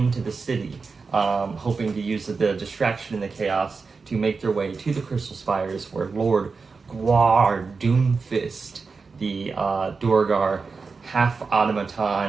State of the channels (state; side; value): quieter; left; 4.6 dB